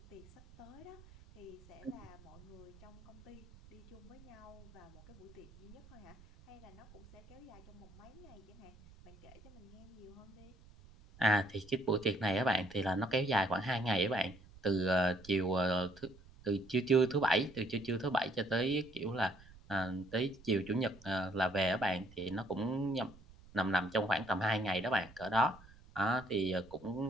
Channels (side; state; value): right; noise; rumble, 22 dB below the sound